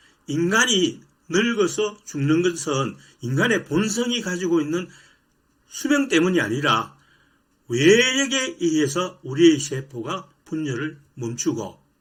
인간이 늙어서 죽는 것은 인간의 본성이 가지고 있는 수명 때문이 아니라 외력에 의해서 우리의 세포가 분열을 멈추고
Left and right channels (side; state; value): both; identical; correlation 1.00